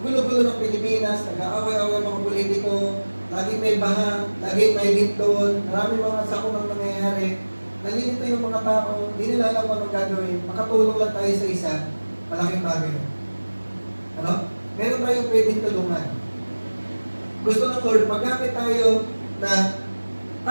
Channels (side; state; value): both; inverted; correlation -1.00